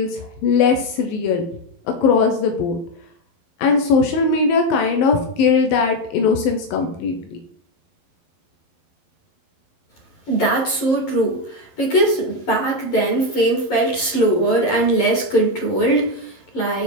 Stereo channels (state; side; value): late; right; 11 ms